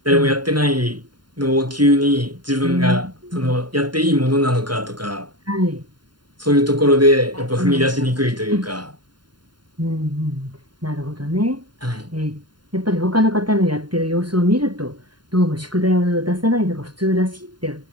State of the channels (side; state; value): left; late; 0.71 ms